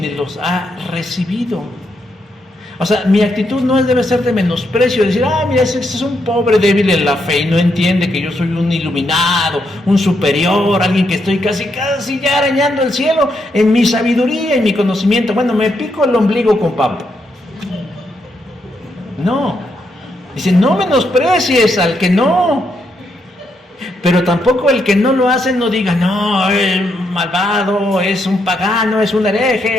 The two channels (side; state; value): both; normal; correlation 0.79